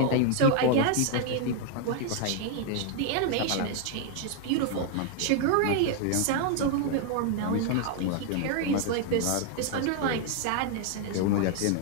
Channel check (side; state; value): both; different; correlation 0.00